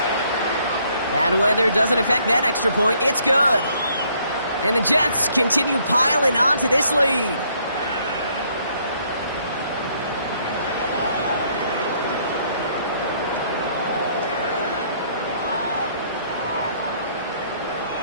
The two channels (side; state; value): both; inverted; correlation -0.66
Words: Bad weather doesn't affect that extra point. It's good. And the Jets continue piling on to this lead.